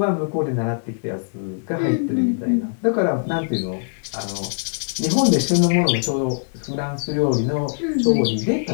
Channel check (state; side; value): silent; right; 64 dB below the other